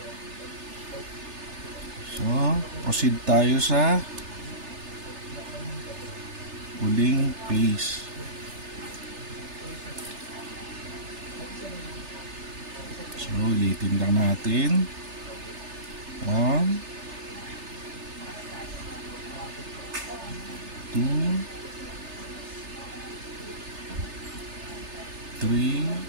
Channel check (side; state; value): left; late; 3.3 ms